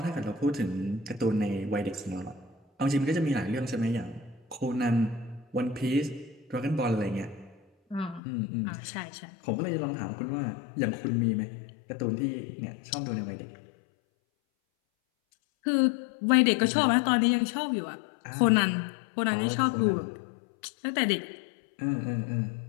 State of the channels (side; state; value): right; drops out; at 8.2 s